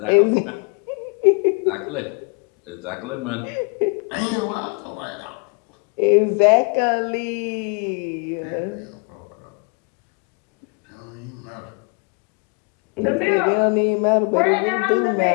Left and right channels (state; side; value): quieter; right; 34.4 dB